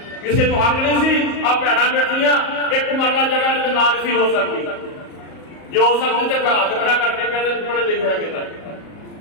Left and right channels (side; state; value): right; late; 38 ms